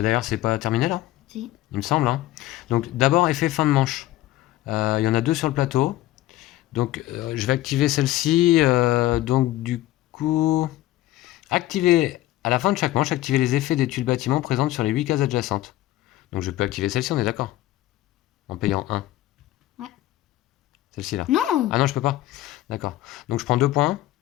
c'est pas terminé là, Si. il me semble. Hein. Donc, d'abord, effet fin de manche. Il y en a 2 sur le plateau. Donc, je vais activer celle-ci. Donc, du coup, activer à la fin de chaque manche, activer les effets des tuiles bâtiments présentes sur les 8 cases adjacentes. Donc, je peux activer celle-ci, on est d'accord? En payant 1. Ouais. Celle-ci là. Non. Ah non, je peux pas. D'accord. Donc, je prends 2 points.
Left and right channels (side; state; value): right; quieter; 15.4 dB